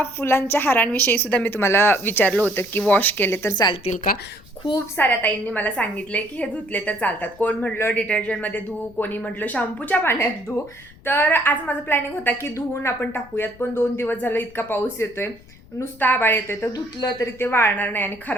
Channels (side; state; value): left; noise; rumble, 24 dB below the sound